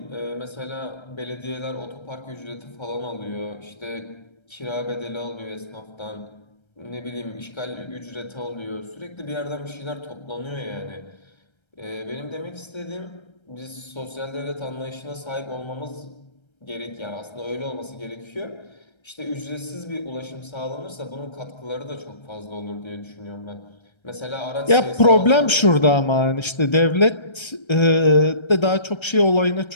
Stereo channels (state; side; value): late; right; 1.3 ms